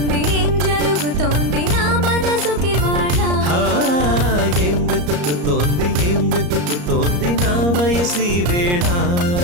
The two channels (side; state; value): left; late; 34 ms